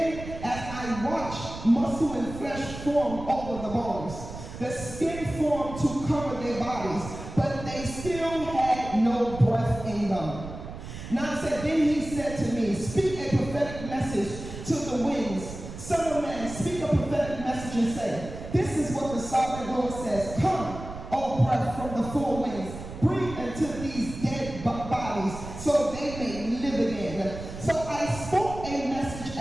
as I watched, muscle and flesh formed over the bones. The skin formed to cover their bodies, but they still had no breath in them. 9 said, then he said to me, speak a prophetic message to the winds. Son of man, speak a prophetic message and say, this is what the sovereign Lord says. Come, O breath from the four winds, breathe into these dead bodies so they may live again. So I spoke a message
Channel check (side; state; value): right; noise; rumble, 11 dB below the sound